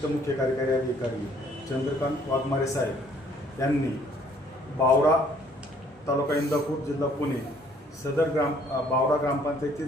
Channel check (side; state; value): both; normal; correlation 0.61